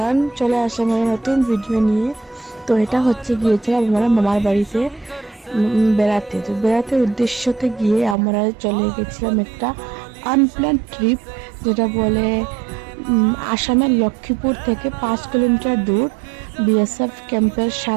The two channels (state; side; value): drops out; left; at 8.2 s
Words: চলে আসলাম একটা নতুন ভিডিও নিয়ে। তো এটা হচ্ছে গিয়েছিলাম আমরা মামার বাড়িতে বেড়াতে। তো বেড়াতে উদ্দেশ্যতে গিয়ে আমরা চলে গেছিলাম একটা আনপ্ল্যান ট্রিপ, যেটা বলে আসামের লক্ষ্মীপুর থেকে 5 কিলোমিটার দূর বিএসএফ ক্যাম্পের